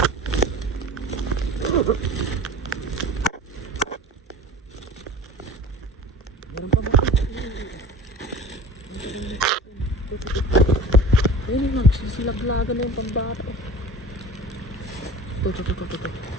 Meron pa ba? Ayun, nagsisilaglagan na yung pambata. Ito.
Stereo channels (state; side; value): normal; both; correlation 0.39